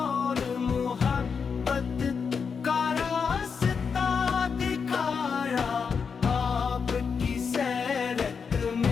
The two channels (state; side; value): quieter; right; 5.9 dB